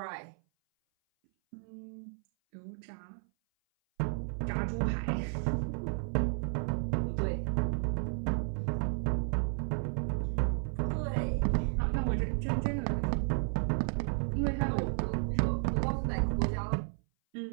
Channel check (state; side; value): silent; left; 56 dB below the other